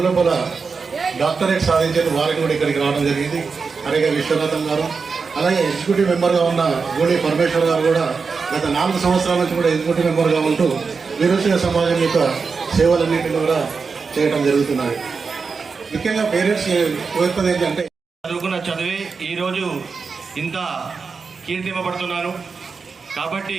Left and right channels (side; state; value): left; quieter; 5.0 dB